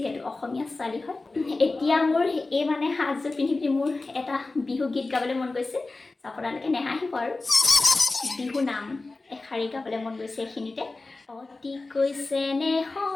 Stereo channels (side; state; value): right; quieter; 3.4 dB